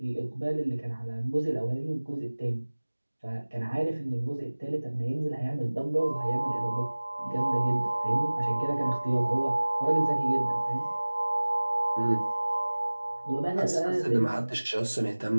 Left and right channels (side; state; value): both; inverted; correlation -1.00